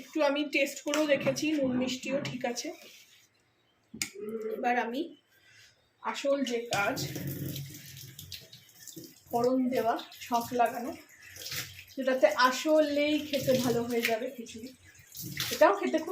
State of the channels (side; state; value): both; identical; correlation 1.00